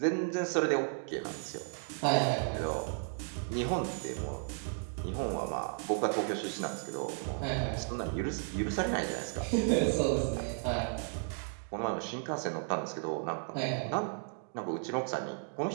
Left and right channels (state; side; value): silent; left; 55 dB below the other